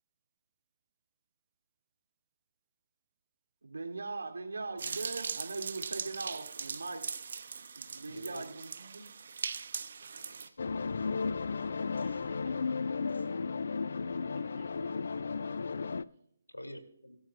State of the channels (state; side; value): inverted; both; correlation -0.88